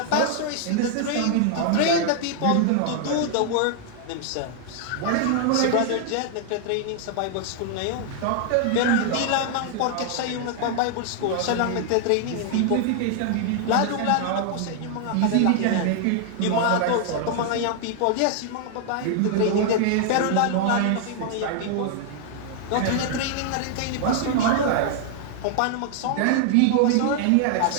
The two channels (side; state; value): both; different; correlation 0.00